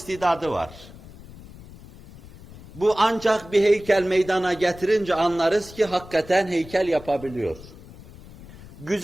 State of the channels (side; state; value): left; noise; rumble, 18 dB below the sound